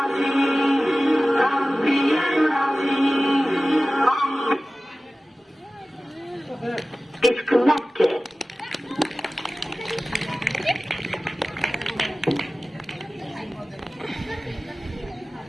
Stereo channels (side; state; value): both; normal; correlation 0.96